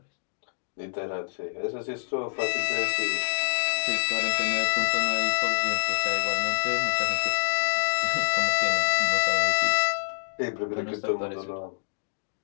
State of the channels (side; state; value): right; silent; digital silence